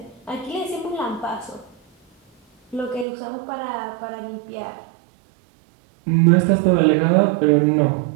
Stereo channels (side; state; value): left; drops out; at 3.1 s